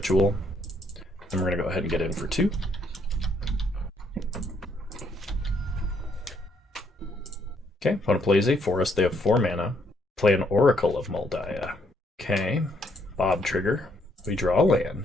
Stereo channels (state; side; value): normal; both; correlation 0.71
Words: And we're going to go ahead and get in for 2. Okay, opponent plays a forest. They have 4 mana. Play an Oracle of Moldiah. Okay, Bob trigger. We draw a